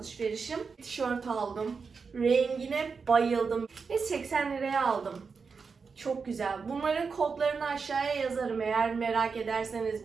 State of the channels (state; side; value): quieter; left; 5.2 dB